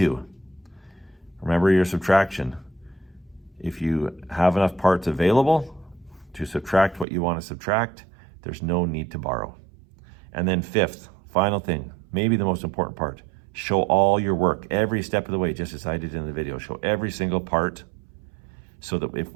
Remember your subtraction. If you have enough parts available to subtract what you want to subtract, there's no need to borrow. And then fifth, final thing, maybe the most important part, show all your work every step of the way, just as I did in the video. Show every single part so that if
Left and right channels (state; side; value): drops out; left; at 7.1 s